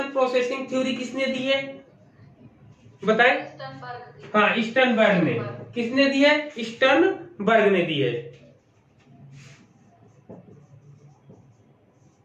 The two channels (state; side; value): identical; both; correlation 1.00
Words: प्रोसेसिंग थ्योरी किसने दी है बताए? हाँ, स्टर्नबर्ग ने। किसने दी है? स्टर्नबर्ग ने दी है।